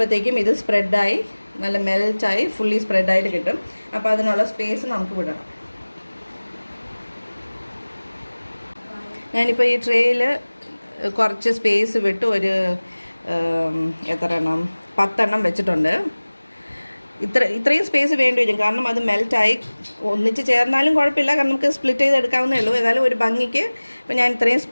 ഇത് സ്പ്രെഡായി നല്ല മെൽറ്റായി ഫുള്ളി സ്പ്രെഡായിട്ട് കിട്ടും. അപ്പോൾ അതിനുള്ള സ്പേസ് നമുക്ക് വിടണം. ഞാനിപ്പോൾ ഈ ട്രേയിൽ കുറച്ച് സ്പേസ് വിട്ട് ഒരു എത്ര എണ്ണം 10 എണ്ണം വെച്ചിട്ടുണ്ട്. ഇത്രയും സ്പേസ് വേണ്ടി വരും, കാരണം അത് മെൽറ്റായി ഒന്നിച്ച് ചേർന്നാലും കുഴപ്പമില്ല, കാരണം നമുക്ക് സ്പ്ലിറ്റ് ചെയ്ത് എടുക്കാവുന്നേ ഉള്ളൂ. ഏതായാലും ഒരു ഭംഗിക്ക് ഇപ്പോൾ ഞാൻ ഇത്രയും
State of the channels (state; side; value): inverted; both; correlation -1.00